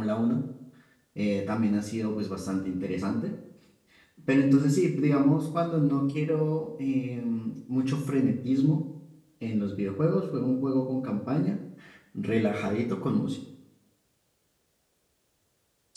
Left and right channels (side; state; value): both; identical; correlation 1.00